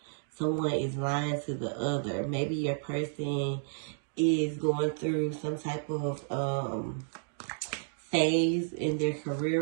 someone is lying to the other. Maybe your person is going through some type of phase in their career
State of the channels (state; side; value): silent; left; digital silence